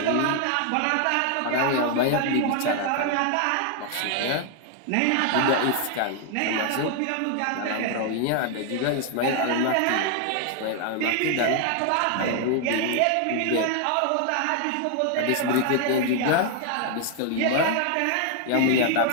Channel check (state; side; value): different; both; correlation 0.00